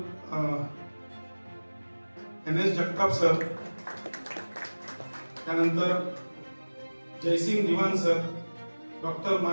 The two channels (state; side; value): inverted; both; correlation -1.00